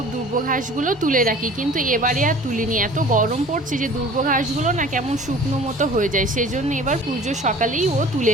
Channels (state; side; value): normal; both; correlation 0.45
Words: দুর্ব ঘাসগুলো তুলে রাখি, কিন্তু এবারে আর তুলিনি। এত গরম পড়ছে যে দুর্ব ঘাসগুলো না কেমন শুকনো মতো হয়ে যায়, সেই জন্য এবার পুজো সকালেই ও তুলে